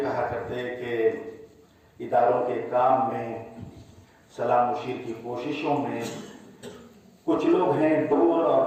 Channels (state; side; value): identical; both; correlation 1.00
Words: करते हैं कि इदारों के काम में, सलाह मुशीर की कोशिशों में कुछ लोग हैं दूर